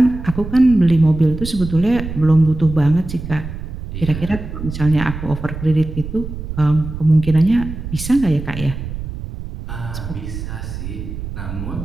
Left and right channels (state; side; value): noise; right; rumble, 8 dB below the sound